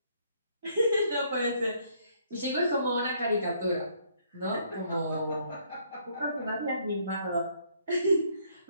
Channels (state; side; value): inverted; both; correlation -0.67